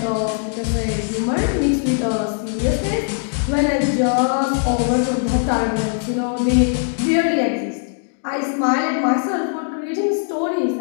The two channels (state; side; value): silent; right; digital silence